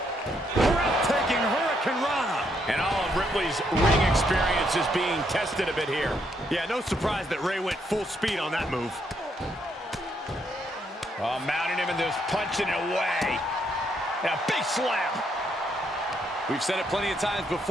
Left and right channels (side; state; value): both; normal; correlation 0.74